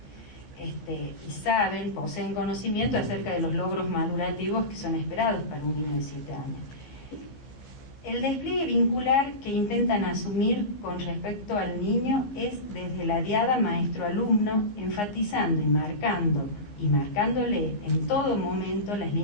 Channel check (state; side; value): late; right; 14 ms